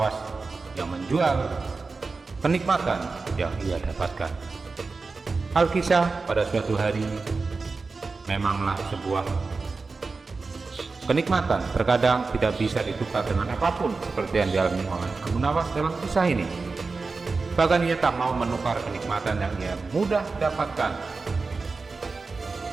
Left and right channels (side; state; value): left; quieter; 4.1 dB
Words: yang menjual kenikmatan yang ia dapatkan. Alkisah pada suatu hari memanglah sebuah kenikmatan terkadang tidak bisa ditukar dengan apapun seperti yang dialami oleh Abu Nawas dalam kisah ini. Bahkan ia tak mau menukar kenikmatan yang ia mudah dapatkan